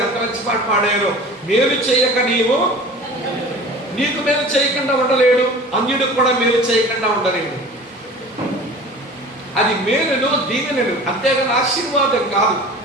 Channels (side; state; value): both; normal; correlation 0.41